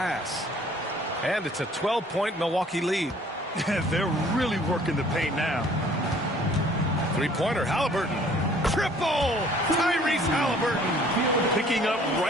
And it's a 12-point Milwaukee lead. They're really working the paint now. Three-pointer, Halliburton. Triple! Tyrese Halliburton. Picking up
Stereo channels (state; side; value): normal; both; correlation 0.56